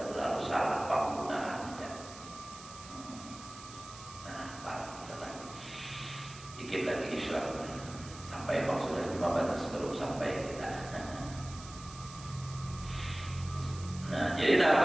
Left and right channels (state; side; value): noise; right; hiss, 16 dB below the sound